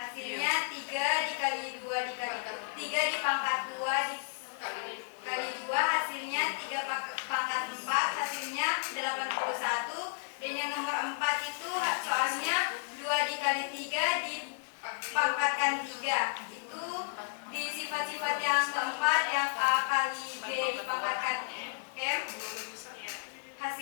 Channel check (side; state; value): right; silent; digital silence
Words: 3 dikali 2 dikali 3 dipangkat 2 dikali 2, hasilnya 3 pangkat 4, hasilnya 81. Dan yang nomor 4 itu soalnya 2 dikali 3 dipangkatkan 3. Itu di sifat-sifat yang keempat, yang A kali B dipangkatkan M,